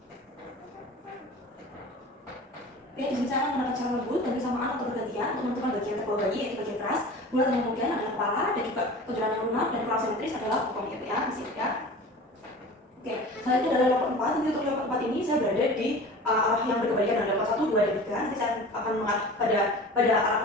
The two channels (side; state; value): both; normal; correlation 0.38